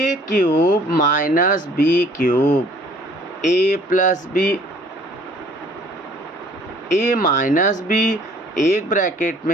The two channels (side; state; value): both; normal; correlation 0.56